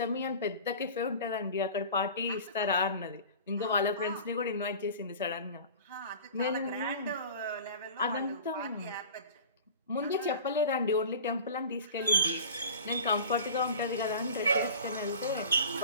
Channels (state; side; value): inverted; both; correlation -0.39